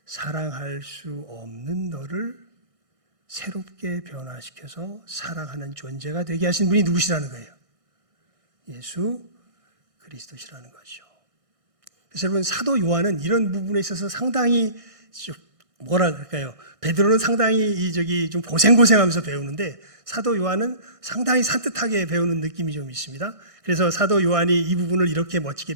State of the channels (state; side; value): late; left; 1.6 ms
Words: 사랑할 수 없는 너를 새롭게 변화시켜서 사랑하는 존재가 되게 하신 분이 누구시라는 거예요? 예수 그리스도시라는 거죠. 그래서 여러분, 사도 요한은 이런 부분에 있어서 상당히 뭐라 그럴까요? 베드로는 상당히 좀 고생하면서 배우는데 사도 요한은 상당히 산뜻하게 배우는 느낌이 좀 있습니다. 그래서 사도 요한이 이 부분을 이렇게 멋지게